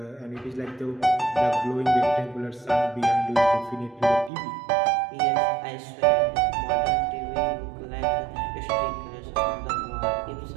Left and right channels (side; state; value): left; drops out; at 4.3 s